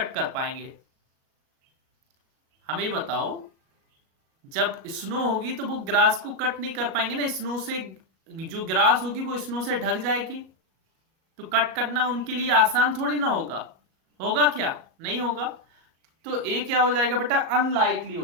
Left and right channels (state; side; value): late; left; 37 ms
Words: कर पाएंगे? हमें बताओ। जब स्नो होगी तो वो ग्रास को कट नहीं कर पाएंगे ना, स्नो से जो ग्रास होगी वो स्नो से ढक जाएगी, तो कट करना उनके लिए आसान थोड़ी ना होगा। होगा क्या? नहीं होगा। तो ए क्या हो जाएगा बेटा? अनलाइकली